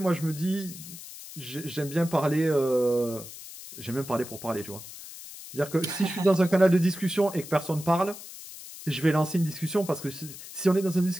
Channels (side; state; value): left; noise; hiss, 14 dB below the sound